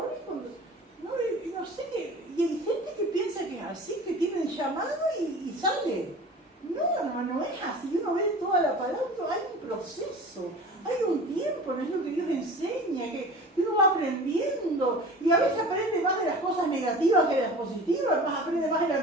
ni cuando... No sé qué... Y hay gente que piensa que es así, que tiene el llamado y sale. No, hermano, no es así. Uno ve toda la palabra, hay un proceso, hay un tiempo, no es lo que Dios enseña, que uno va aprendiendo. Y a veces aprende más de las cosas negativas que de las positivas, aprende más de la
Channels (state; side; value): normal; both; correlation 0.39